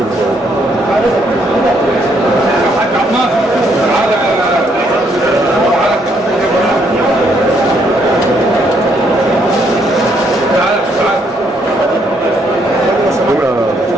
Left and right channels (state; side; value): normal; both; correlation 0.71